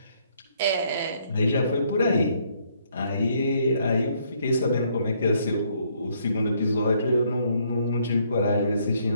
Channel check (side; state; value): both; inverted; correlation -0.68